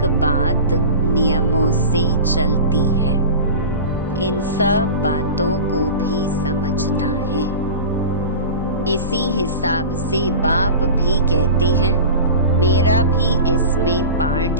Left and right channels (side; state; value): both; inverted; correlation -0.31